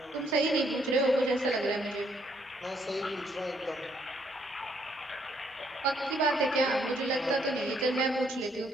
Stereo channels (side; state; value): both; normal; correlation 0.70